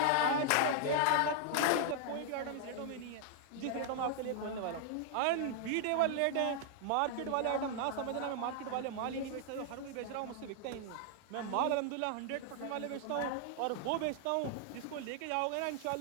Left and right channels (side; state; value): both; different; correlation 0.00